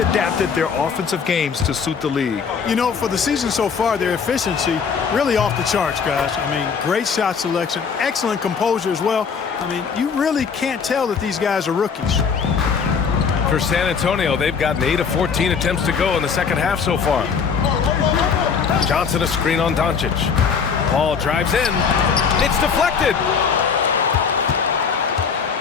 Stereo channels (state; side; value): quieter; right; 6.1 dB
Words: adapted their offensive games to suit the league. You know, for the season so far, their efficiency really off the charts, guys. I mean, great shot selection, excellent composure as well. I mean, you really can't tell that these guys are rookies. For San Antonio, they've gotten 8 of 14 attempts to go in the second half so far. Johnson a screen on Doncic. Ball drives in. It's deflected.